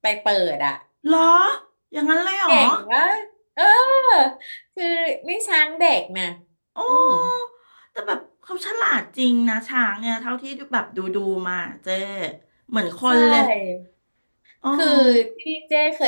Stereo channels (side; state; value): both; inverted; correlation -1.00